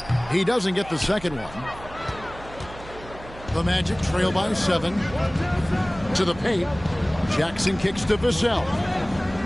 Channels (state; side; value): noise; right; hum, 17 dB below the sound